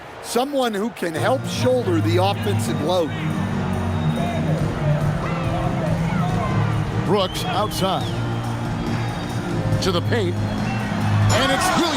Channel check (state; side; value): identical; both; correlation 1.00